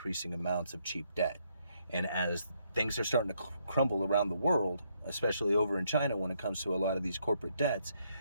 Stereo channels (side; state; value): both; inverted; correlation -0.74